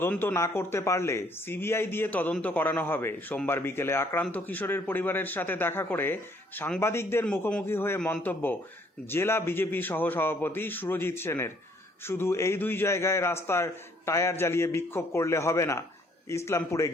না করতে পারলে সিবিআই দিয়ে তদন্ত করানো হবে। সোমবার বিকেলে আক্রান্ত কিশোরের পরিবারের সাথে দেখা করে সাংবাদিকদের মুখোমুখি হয়ে মন্তব্য জেলা বিজেপি সহসভাপতি সুরজিৎ সেনের। শুধু এই দুই জায়গায় রাস্তার টায়ার জ্বালিয়ে বিক্ষোভ করলে হবে না, ইসলামপুরে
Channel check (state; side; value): normal; both; correlation 0.64